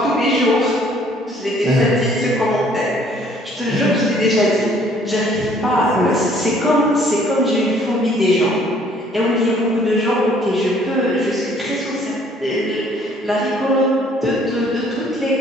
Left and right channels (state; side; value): normal; both; correlation 0.60